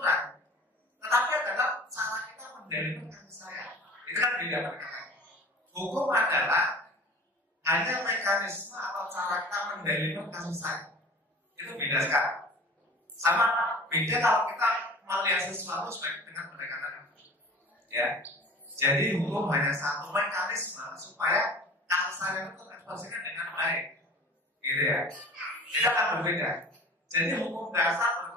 tetapi adalah cara kita mendalilkan kasih sayang. Itu kan beda pendekatannya. Hukum adalah hanya mekanisme atau cara kita mendalilkan kasih sayang. Itu beda sekali. Sama beda kalau kita melihat sesuatu sebagai dengan pendekatan hukum. Ya, jadi hukum hanya satu mekanisme supaya kasih sayang itu terekspresikan dengan baik, gitu ya. Itu akan berbeda. Jadi hukum dasar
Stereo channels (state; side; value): normal; both; correlation 0.42